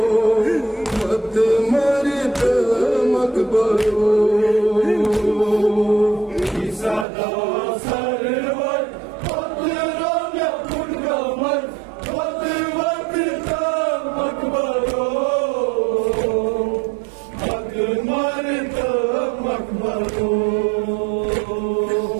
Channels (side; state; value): left; drops out; at 7.1 s